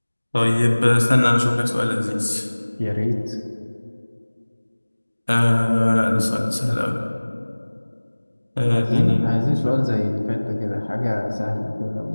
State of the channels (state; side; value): inverted; both; correlation -1.00